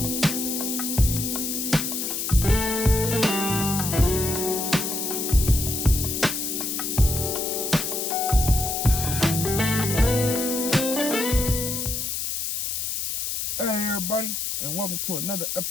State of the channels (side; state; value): left; noise; hiss, 2 dB below the sound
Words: and welcome to another